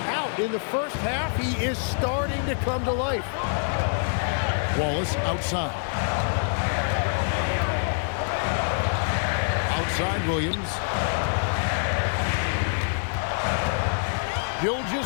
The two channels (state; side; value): silent; right; digital silence